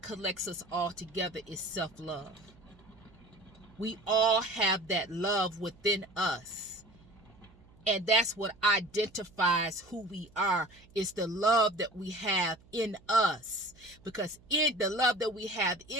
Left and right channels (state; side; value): noise; right; hum, 26 dB below the sound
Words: collects us all together is self-love. We all have that love within us. And that's what identifies who we are, is the love that we have in us. Because in the love that we have